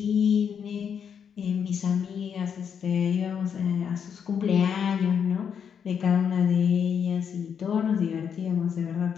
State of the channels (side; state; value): right; quieter; 7.5 dB